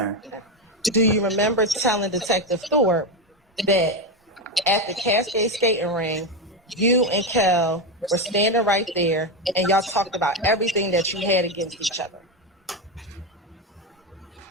Do you remember telling Detective Thorpe that at the Cascade skating ring, you and Kel were standing right there and y'all talked about everything that you had against each other?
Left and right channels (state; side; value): normal; both; correlation 0.12